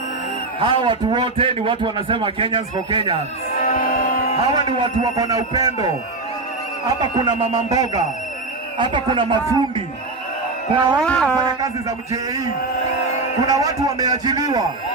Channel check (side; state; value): left; quieter; 3.3 dB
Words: Hawa watu wote ni watu wanasema Kenyans for Kenyans. Hawa ni watu wako na upendo. Hapa kuna mama mboga. Hapa kuna mafundi. Kuna watu wanafanya kazi za mjei. Kuna watu wameajiliwa.